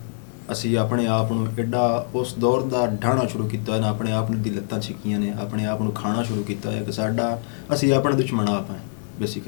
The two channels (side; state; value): right; silent; 56 dB below the other